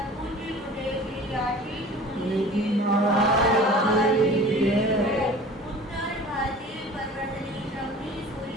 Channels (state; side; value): normal; both; correlation 0.43